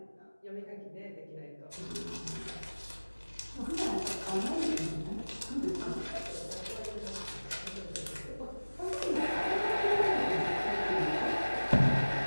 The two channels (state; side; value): inverted; both; correlation -1.00